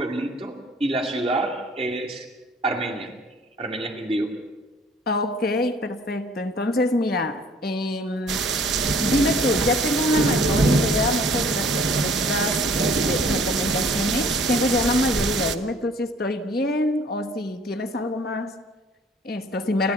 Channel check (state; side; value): normal; both; correlation 0.55